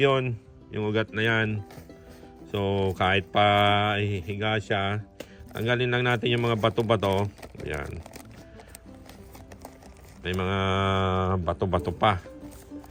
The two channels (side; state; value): both; identical; correlation 1.00